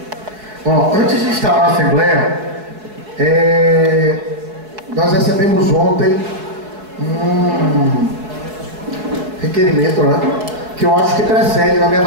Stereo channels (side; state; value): left; late; 4.7 ms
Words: Bom, antes de instalar a Assembleia, nós recebemos ontem um requerimento, né? Que eu acho que precede, na minha